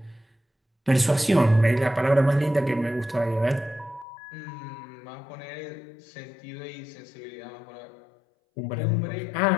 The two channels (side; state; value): right; drops out; at 4.0 s